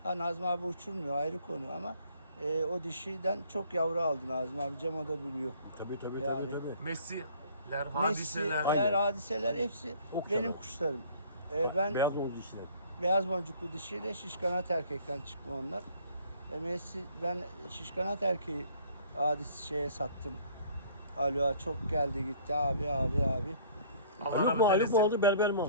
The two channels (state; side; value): inverted; both; correlation -0.55